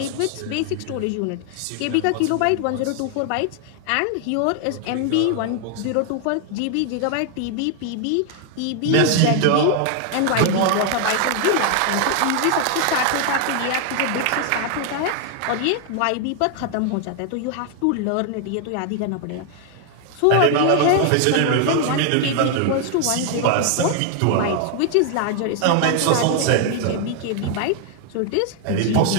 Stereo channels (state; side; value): different; both; correlation 0.00